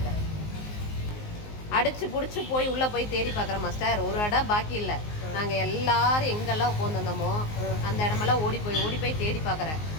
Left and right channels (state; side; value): late; right; 19 ms